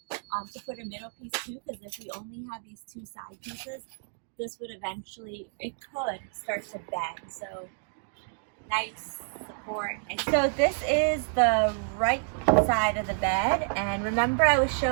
to put a middle piece too, because if we only have these 2 side pieces, this would eventually, it could start to bend. So nice support. So this is the right side of the bed, and remember I was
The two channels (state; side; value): silent; left; digital silence